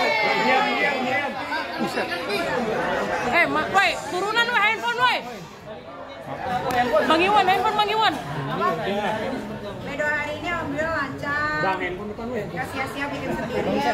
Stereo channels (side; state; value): both; identical; correlation 1.00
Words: Woi, turunan woi, handphone woi. Bang Iwan, handphone Bang Iwan. Medo hari ini alhamdulillah lancar. Bang, handphone depan weh. Gak sia-sia bikin